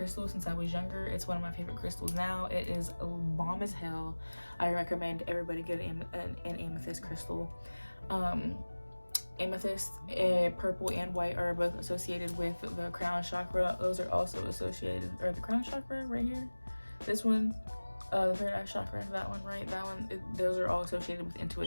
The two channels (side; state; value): both; inverted; correlation -1.00